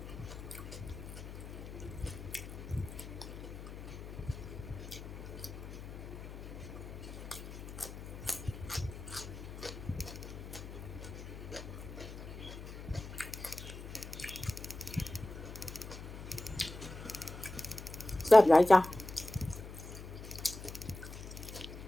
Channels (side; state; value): left; noise; hum, 11 dB below the sound